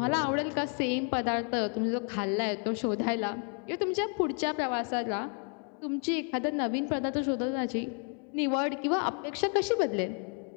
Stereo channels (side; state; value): right; quieter; 39.0 dB